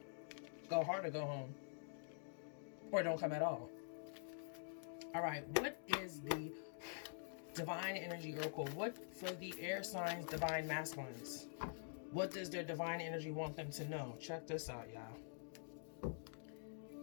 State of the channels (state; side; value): silent; right; digital silence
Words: go hard or go home, or don't come at all. All right, what is the divine energy oracle? What for the air signs, divine masculines? What does their divine energy want them to know? Check this out, y'all.